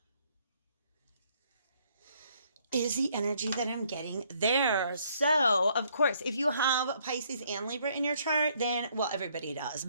Is the energy that I'm getting there. So, of course, if you have Pisces and Libra in your chart, then, well, everybody does.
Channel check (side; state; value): both; inverted; correlation -0.67